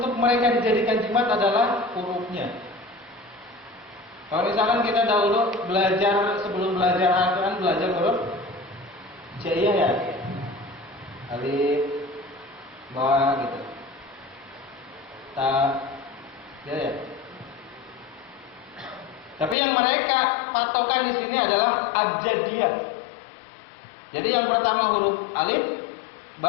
mereka dijadikan jimat adalah hurufnya. Kalau misalkan kita dahulu belajar, sebelum belajar Al-Quran, belajar huruf Jaiyah ya, alif, ba gitu, ta, ya. Tapi yang mereka patokan di sini adalah abjadiyah. Jadi yang pertama huruf alif,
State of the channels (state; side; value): drops out; right; at 19.6 s